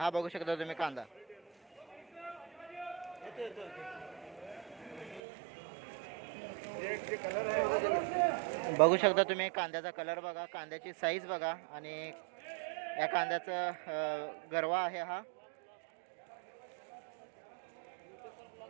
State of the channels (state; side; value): drops out; left; at 5.2 s